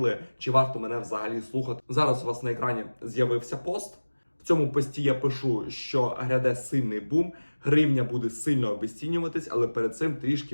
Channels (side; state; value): both; inverted; correlation -1.00